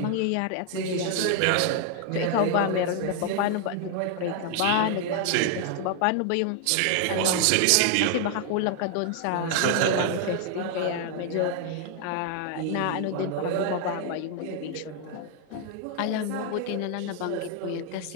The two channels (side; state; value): both; different; correlation 0.00